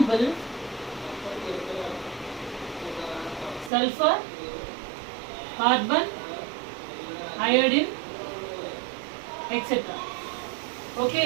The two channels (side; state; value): left; drops out; at 3.7 s